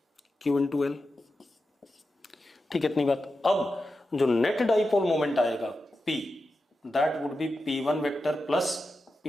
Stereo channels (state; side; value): normal; both; correlation 0.90